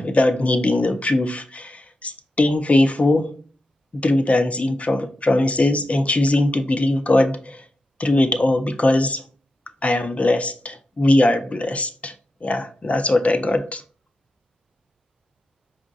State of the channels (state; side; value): normal; both; correlation 0.89